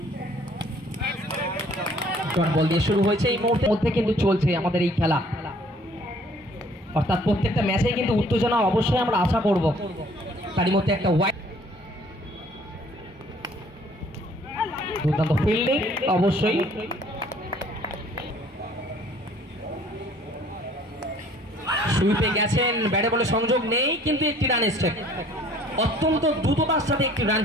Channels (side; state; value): both; normal; correlation 0.57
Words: বল দিয়ে শুরু হয়েছে এই মুহূর্তের মধ্যে কিন্তু চলছে আমাদের এই খেলা, অর্থাৎ প্রত্যেকটা ম্যাচেই কিন্তু উত্তেজনা অবশ্যই আমরা আশা করব। তারই মধ্যে একটা ওয়াইড দুর্দান্ত ফিল্ডিং অবশ্যই। সুইপে গেছেন, ব্যাটে বলে সংযোগ নেই, কিন্তু একটি রান এসছে, অত্যন্ত দ্রুততার সাথে একটি রান